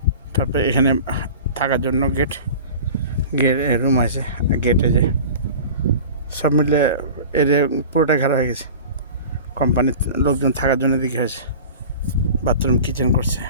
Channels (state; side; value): inverted; both; correlation -0.37